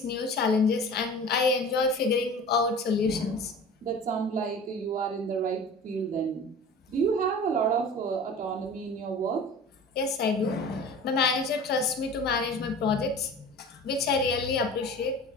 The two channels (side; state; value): both; normal; correlation 0.39